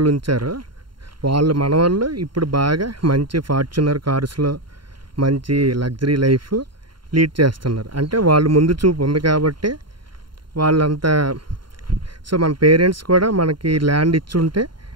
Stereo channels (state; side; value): late; left; 0.72 ms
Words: ఉంచారో మన వాళ్ళు ఇప్పుడు బాగా మంచి ఫార్చునర్ కార్స్లో మంచి లగ్జరీ లైఫ్ లీడ్ చేస్తున్నారు. అంటే వాళ్ళు ముందు చూపు ఉంది కాబట్టి వాళ్ళంతా. సో మన పేరెంట్స్ కూడా మనకి ల్యాండ్ ఇచ్చుంటే